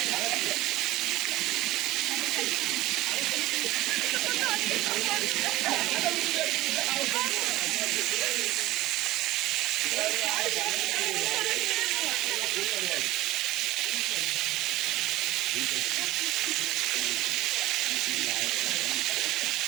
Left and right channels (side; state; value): left; quieter; 17.1 dB